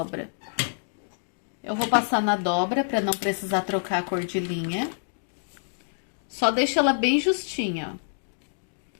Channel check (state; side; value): silent; right; digital silence